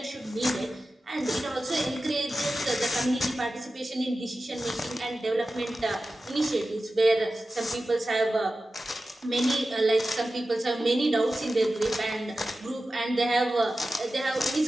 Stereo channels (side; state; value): both; normal; correlation 0.94